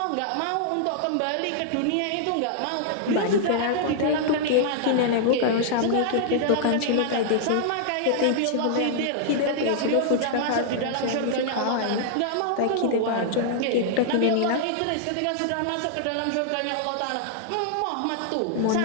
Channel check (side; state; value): both; different; correlation -0.01